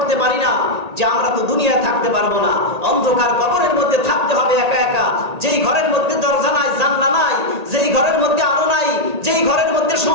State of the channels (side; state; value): left; late; 1.8 ms